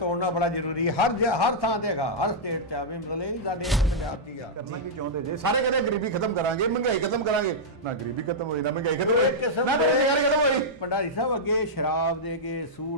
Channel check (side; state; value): both; normal; correlation -0.09